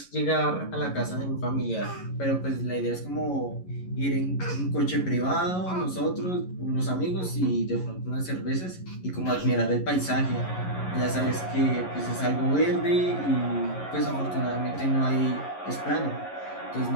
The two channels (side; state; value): right; late; 11 ms